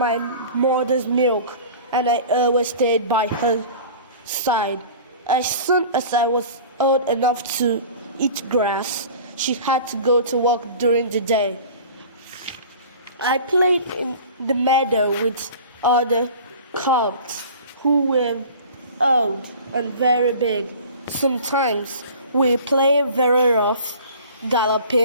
mother's milk, and I always stayed by her side. As soon as I was old enough to eat grass, she had to go to work during the day. I played in the meadow with other colts who were old and very big. Sometimes we played very rough,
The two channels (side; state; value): both; inverted; correlation -0.42